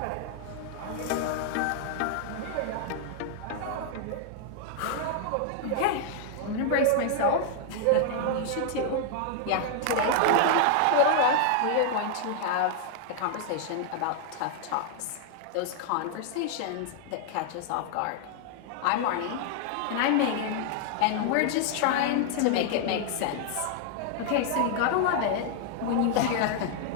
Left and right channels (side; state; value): both; different; correlation 0.00